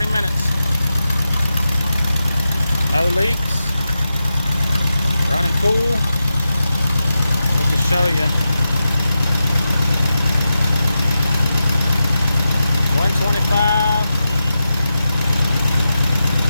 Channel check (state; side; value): inverted; both; correlation -0.89